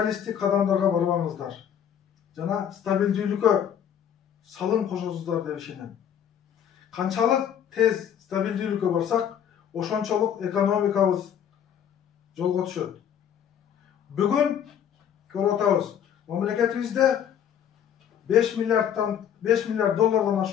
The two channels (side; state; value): right; quieter; 9.1 dB